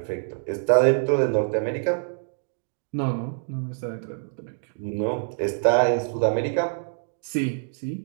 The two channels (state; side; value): silent; left; digital silence